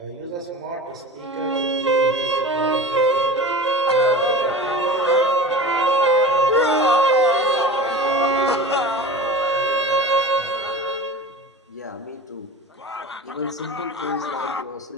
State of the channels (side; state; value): both; normal; correlation 0.35